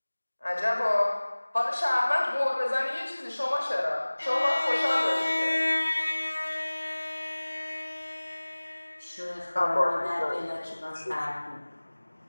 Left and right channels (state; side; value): inverted; both; correlation -1.00